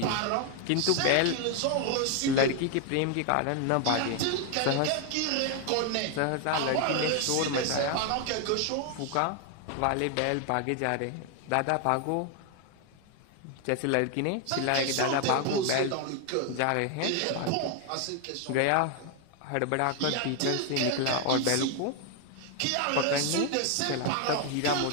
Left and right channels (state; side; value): different; both; correlation 0.01